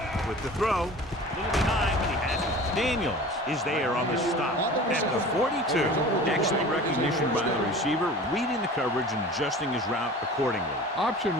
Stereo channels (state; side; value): normal; both; correlation 0.40